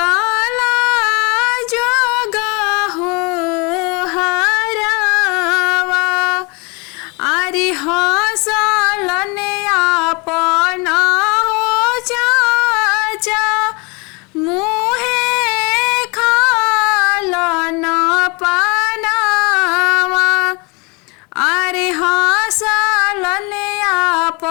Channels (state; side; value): quieter; right; 29.6 dB